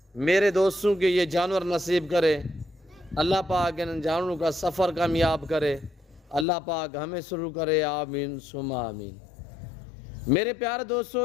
मेरे दोस्तों के ये जानवर नसीब करे, अल्लाह पाक इन जानवरों का सफ़र कामयाब करे, अल्लाह पाक हमें शुरू करे, आमीन सुमा आमीन। मेरे प्यारे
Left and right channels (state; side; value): drops out; right; at 6.5 s